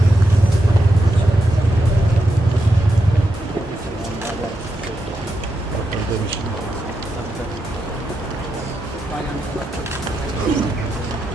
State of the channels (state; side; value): normal; both; correlation 0.85